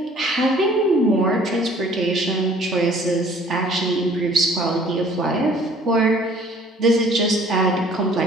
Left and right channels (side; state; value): both; normal; correlation 0.54